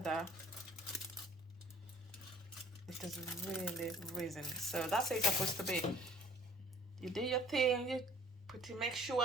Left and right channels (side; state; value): both; normal; correlation 0.53